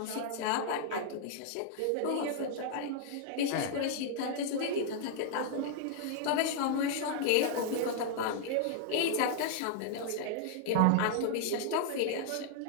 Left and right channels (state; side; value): different; both; correlation -0.01